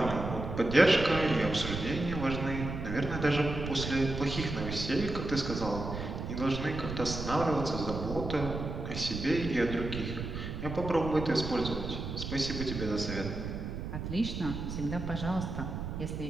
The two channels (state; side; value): noise; right; rumble, 5 dB below the sound